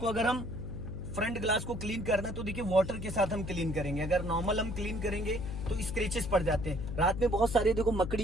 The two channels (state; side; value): noise; left; hum, 6 dB below the sound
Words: अगर हम फ्रंट ग्लास को क्लीन करना है तो देखिए वाटर के साथ हम क्लीन करेंगे। अगर नॉर्मल हम क्लीन करेंगे तो स्क्रेचेस पड़ जाते हैं। रात में बहुत सारे देखो मकड़ी